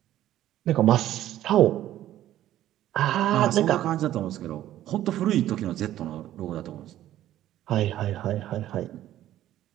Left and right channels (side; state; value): left; quieter; 13.0 dB